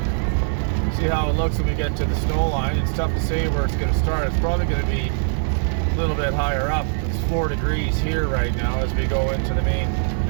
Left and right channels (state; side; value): silent; left; digital silence